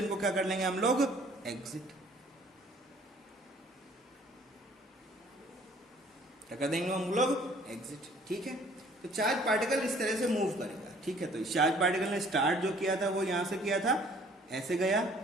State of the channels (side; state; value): both; normal; correlation 0.56